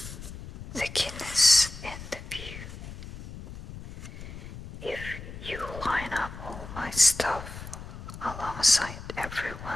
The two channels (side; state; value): left; noise; rumble, 12 dB below the sound